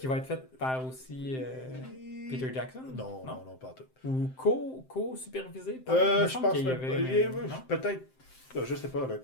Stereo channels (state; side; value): late; right; 7.7 ms